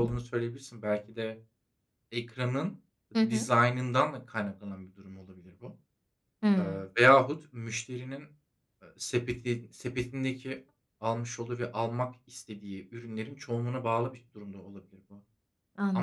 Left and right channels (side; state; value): both; identical; correlation 1.00